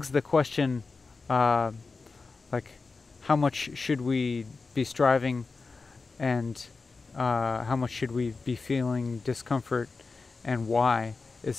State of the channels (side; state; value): right; quieter; 4.2 dB